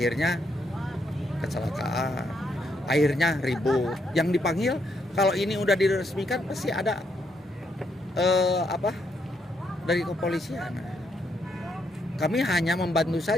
kecelakaan, akhirnya ribut. Yang dipanggil kalau ini udah diresmikan pasti ada dari kepolisian. Kami hanya membantu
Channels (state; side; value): normal; both; correlation 0.76